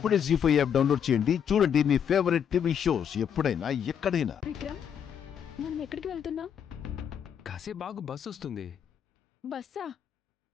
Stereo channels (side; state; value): right; quieter; 8.2 dB